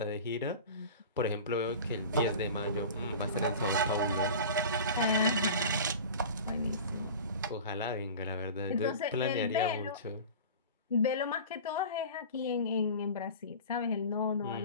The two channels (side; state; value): both; inverted; correlation -0.35